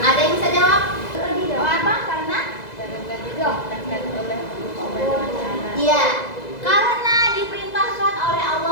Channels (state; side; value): late; right; 2.0 ms